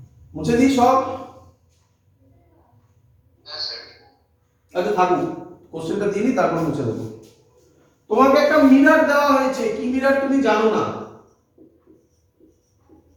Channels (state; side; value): identical; both; correlation 1.00